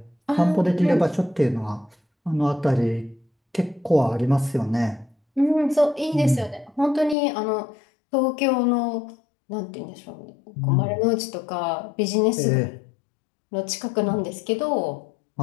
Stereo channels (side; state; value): right; drops out; at 7.2 s